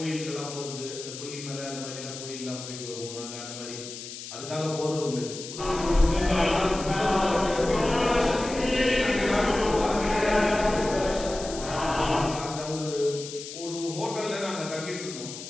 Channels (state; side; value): noise; left; hiss, 11 dB below the sound